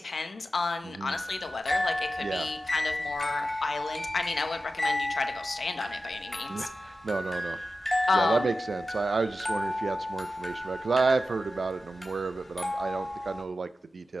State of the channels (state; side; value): normal; both; correlation 0.93